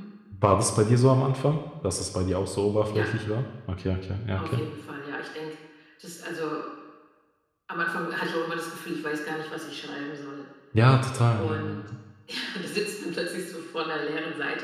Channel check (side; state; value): both; identical; correlation 1.00